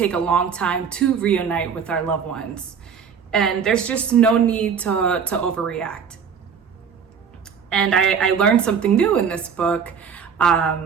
a long time to reunite with our loved ones. And there's just no need to overreact. And I learned something new in this book.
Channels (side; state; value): left; quieter; 6.8 dB